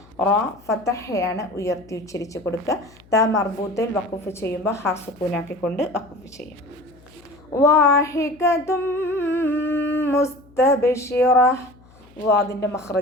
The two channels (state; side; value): noise; left; hum, 27 dB below the sound